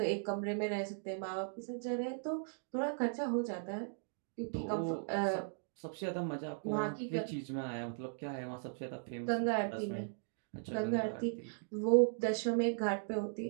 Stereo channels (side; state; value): left; silent; digital silence